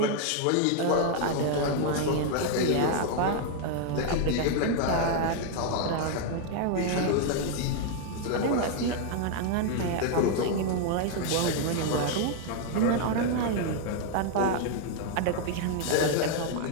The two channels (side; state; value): both; different; correlation 0.00